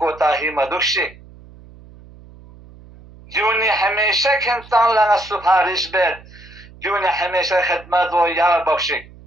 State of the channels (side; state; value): right; noise; hum, 22 dB below the sound